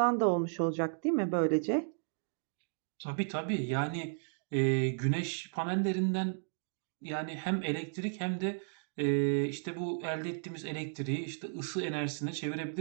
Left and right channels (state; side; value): silent; left; digital silence